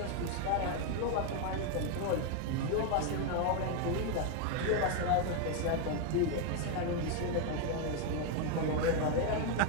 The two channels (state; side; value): different; both; correlation 0.01